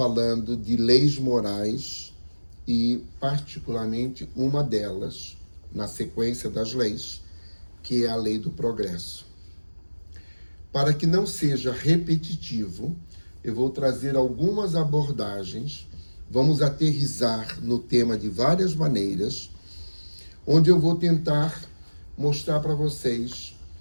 de leis morais e, particularmente, uma delas, na sequência das leis, que é a lei do progresso. Para que não seja repetitivo, eu vou trazer algumas abordagens, vamos aterrissar no tema de várias maneiras, onde eu vou tentar mostrar para vocês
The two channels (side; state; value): both; inverted; correlation -1.00